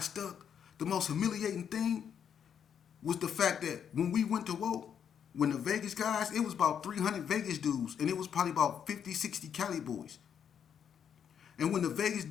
stuck. The most humiliating thing was the fact that when we went to war, when the Vegas guys, it was about 300 Vegas dudes, and it was probably about 50, 60 Cali boys. And when the Vegas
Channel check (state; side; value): quieter; right; 8.2 dB